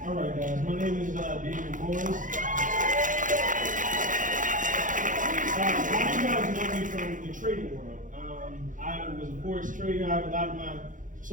All right, guys. My name is David Morris. You guys know me from the trading world. I was a forex trader. I have a lot of my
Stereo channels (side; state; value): left; late; 0.38 ms